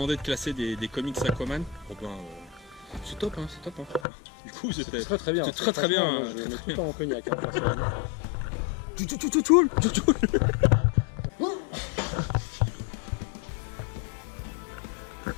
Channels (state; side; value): drops out; right; at 4.0 s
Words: de classer des comics Aquaman. Oh ben, c'est top, hein, c'est top. Hein. Du coup, c'était très bien. C'est très bien. Franchement, je mets tout le temps en cognac. Hein, personnellement.